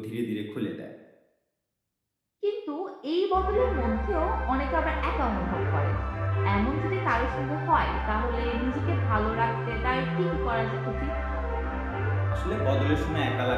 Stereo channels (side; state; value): both; identical; correlation 1.00